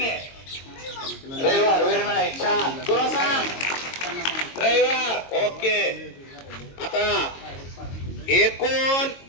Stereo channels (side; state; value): right; late; 22 ms